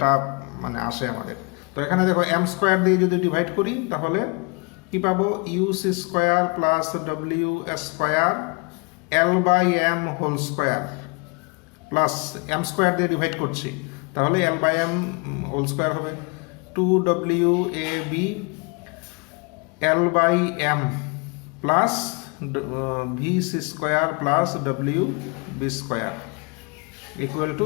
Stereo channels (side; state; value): right; quieter; 31.3 dB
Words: মানে আসে আমাদের। তো এখানে দেখো এম স্কয়ার দিয়ে যদি ডিভাইড করি তাহলে কি পাবো? U C square plus W square L by M whole square plus M square দিয়ে ডিভাইড করছি, তাহলে L by M whole square হবে 2WAB L by M plus V C square plus W B square equal